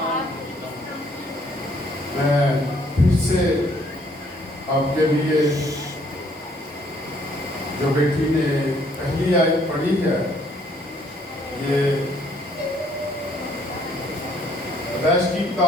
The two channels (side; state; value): both; normal; correlation 0.65